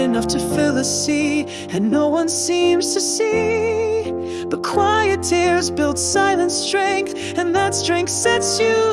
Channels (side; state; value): both; identical; correlation 1.00